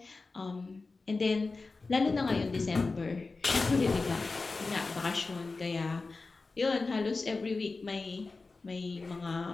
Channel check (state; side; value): quieter; right; 3.8 dB